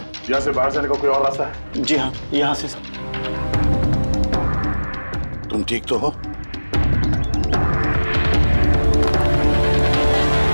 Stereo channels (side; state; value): both; inverted; correlation -1.00